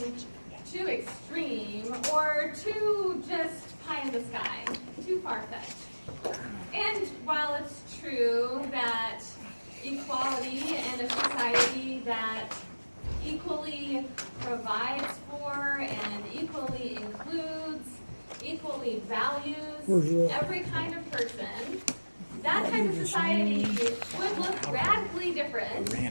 too extreme or too just pie in the sky, too far-fetched. And while it's true that equality and a society that equally provides for and equally includes, equally values every kind of person, that type of society would look radically different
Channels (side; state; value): both; inverted; correlation -1.00